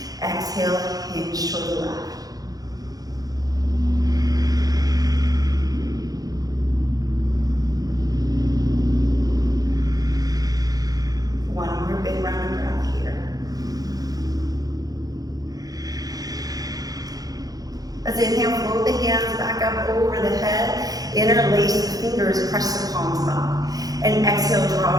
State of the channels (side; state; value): left; late; 0.18 ms